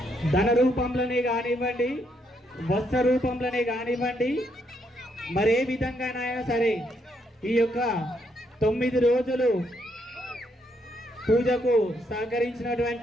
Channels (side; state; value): both; normal; correlation 0.75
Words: ధన రూపంలోనే కానివ్వండి, వస్త్ర రూపంలోనే కానివ్వండి, మరే విధంగానైనా సరే ఈ యొక్క 9 రోజులు పూజకు